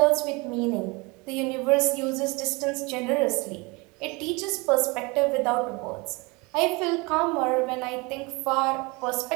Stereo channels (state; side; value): quieter; left; 26.8 dB